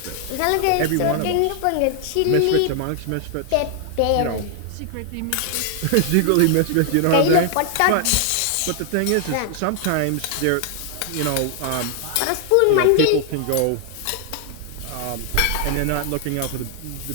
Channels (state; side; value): different; both; correlation 0.00